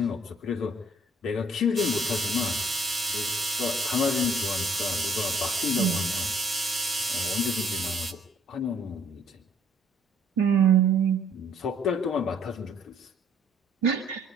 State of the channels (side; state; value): both; normal; correlation 0.61